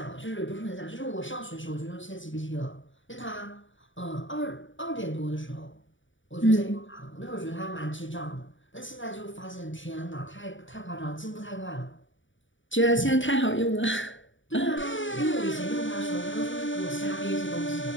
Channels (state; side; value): late; right; 0.56 ms